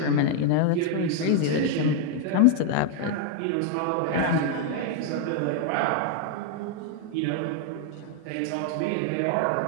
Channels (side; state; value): both; different; correlation 0.00